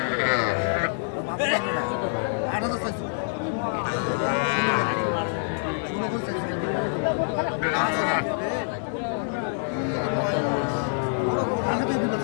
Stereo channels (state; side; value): silent; right; digital silence